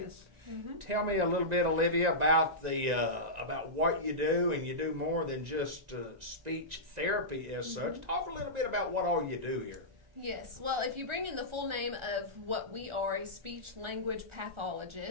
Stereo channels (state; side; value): late; left; 1.9 ms